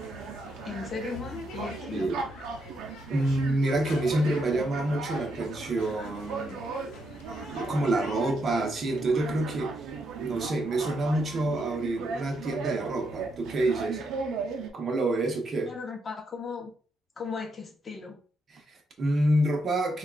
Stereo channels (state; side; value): normal; both; correlation 0.79